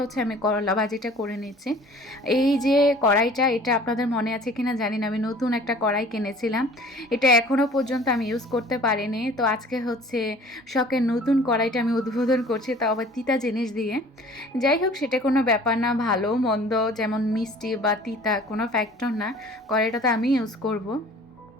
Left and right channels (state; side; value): normal; both; correlation 0.48